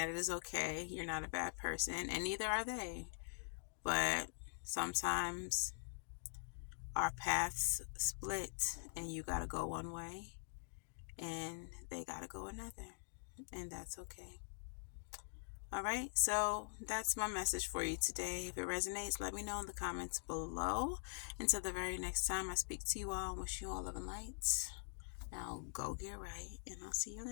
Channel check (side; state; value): right; silent; digital silence